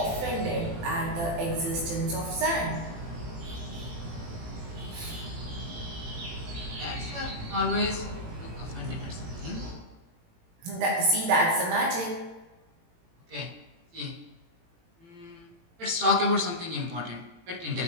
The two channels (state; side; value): late; left; 18 ms